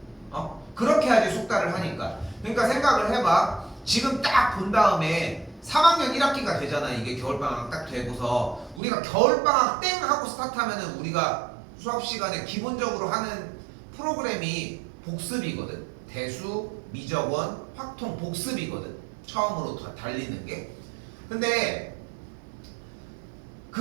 그렇게 해야지 숙달을 하니까. 그러니까 생각을 해봐. 지금 딱 본 다음에 3학년 1학기가 되잖아. 이게 겨울방학 딱 되고서 우리가 겨울방학 땡 하고 스타트하면은 우리가 수업 시간에 기본적으로 하는 프로그램이 복습이거든. 대수, 미적원, 확통 복습이거든. 처음으로 달리는 게. 근데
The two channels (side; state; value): left; drops out; at 8.8 s